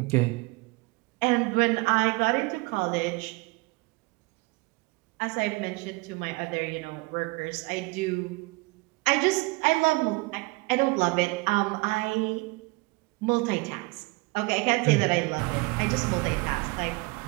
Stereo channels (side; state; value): left; quieter; 25.8 dB